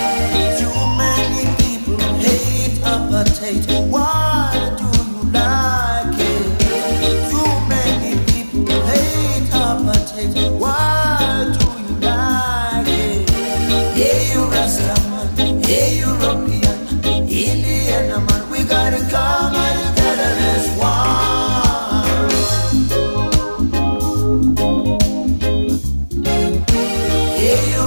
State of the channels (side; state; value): both; inverted; correlation -1.00